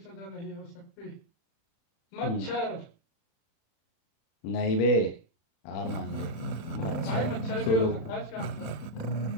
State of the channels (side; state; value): right; late; 35 ms